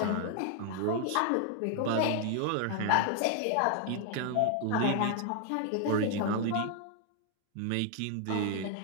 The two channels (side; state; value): both; different; correlation 0.00